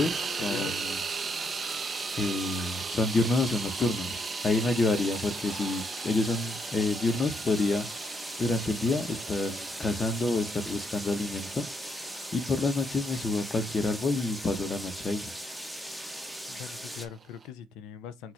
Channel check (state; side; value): normal; both; correlation 0.77